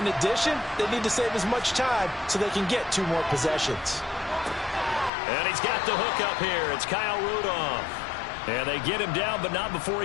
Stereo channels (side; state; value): right; drops out; at 5.1 s